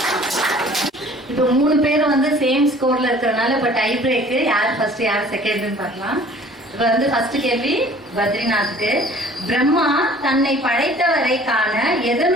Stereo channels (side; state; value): both; normal; correlation 0.51